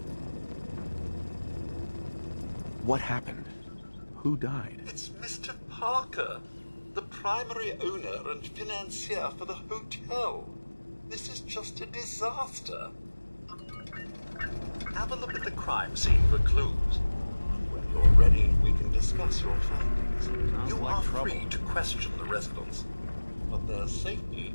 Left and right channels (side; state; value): both; inverted; correlation -1.00